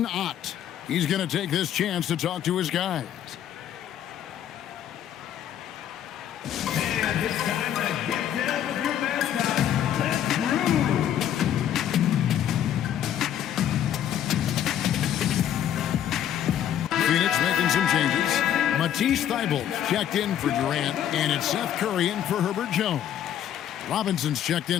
Ott. He's going to take this chance to talk to his guys. And it's time to get down with your mascot. Let's groove. Phoenix making some changes. Matisse Thybulle checked in for Durant, and it's Seth Curry in for Herbert Jones. Robinson's checked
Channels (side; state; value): right; quieter; 10.4 dB